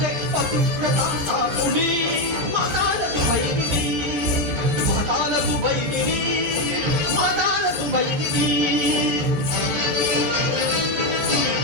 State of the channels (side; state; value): left; late; 13 ms